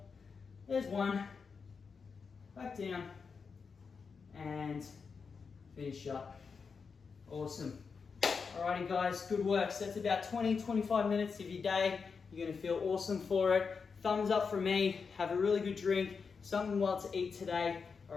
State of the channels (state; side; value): quieter; right; 5.4 dB